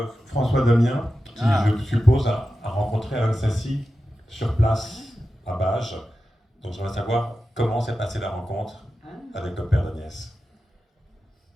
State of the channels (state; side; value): normal; both; correlation 0.92